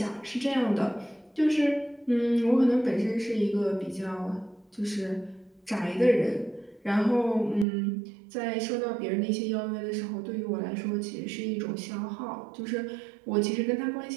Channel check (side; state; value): left; drops out; at 7.7 s